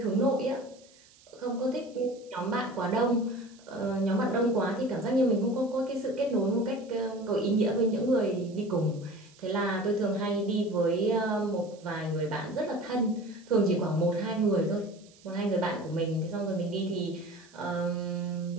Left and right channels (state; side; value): noise; right; hiss, 27 dB below the sound